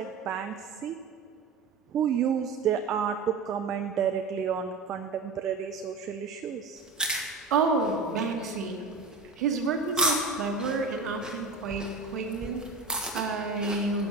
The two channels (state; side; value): quieter; left; 4.2 dB